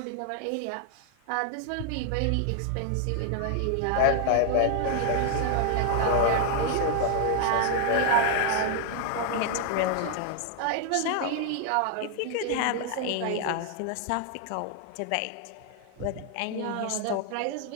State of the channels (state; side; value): different; both; correlation 0.00